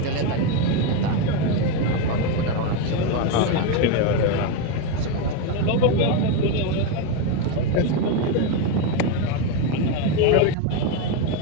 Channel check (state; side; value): different; both; correlation 0.03